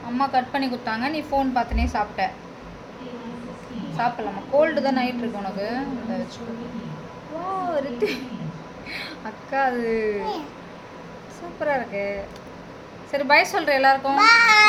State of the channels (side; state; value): both; identical; correlation 1.00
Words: அம்மா கட் பண்ணி கொடுத்தாங்க, நீ ஃபோன் பார்த்துனே சாப்பிட்ட. சாப்பிடலாமா? கோல்டு தான் நைட் இருக்கு உனக்கு. அதை வச்சு அக்கா அது சூப்பராக இருக்கு. சரி பாய் சொல்கிறேன் எல்லாருக்கும்.